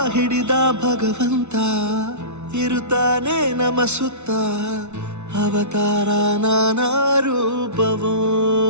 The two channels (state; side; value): late; left; 0.82 ms